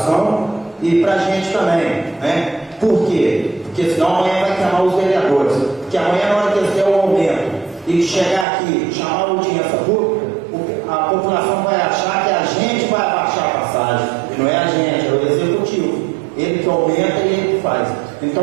e para a gente também, né? Por quê? Porque senão amanhã vai queimar os vereadores. Porque amanhã, na hora que eles der o aumento e chegar aqui, chamar a audiência pública, a população vai achar que a gente vai abaixar a passagem. E não é a gente, é o executivo. Ele que aumenta e ele que faz.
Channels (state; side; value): drops out; left; at 8.5 s